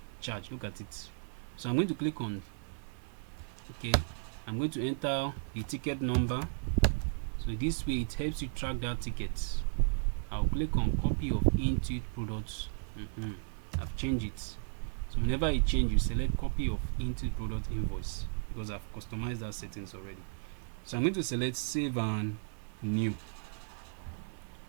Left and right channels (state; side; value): silent; left; 55 dB below the other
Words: charge. Look at it. So I'm going to click on I'm going to enter the ticket number. So this way it helps you track that ticket. I'll click on copy of Intuit products. I've changed it. So whenever you change, you select copy of Intuit product invoice, because I've customized that settings already. So I'm going to select save and new.